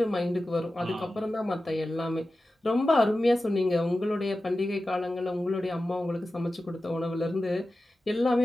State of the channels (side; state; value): both; normal; correlation 0.94